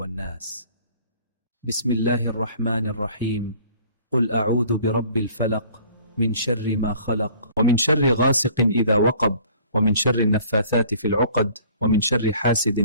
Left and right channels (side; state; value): both; inverted; correlation -0.53